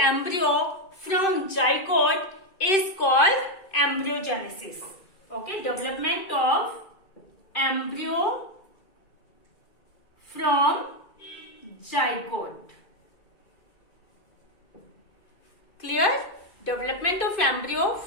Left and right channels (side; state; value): right; late; 2.5 ms